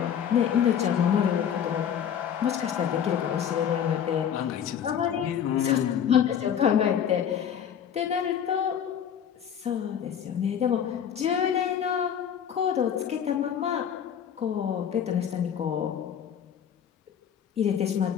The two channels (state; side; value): quieter; right; 8.7 dB